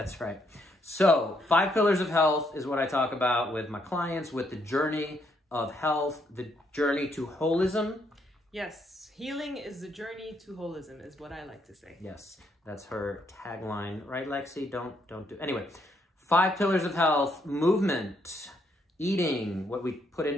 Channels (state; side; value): normal; both; correlation 0.73